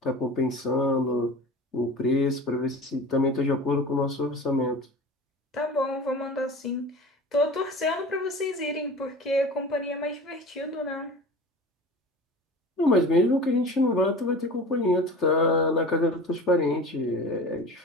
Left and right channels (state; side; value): normal; both; correlation 0.37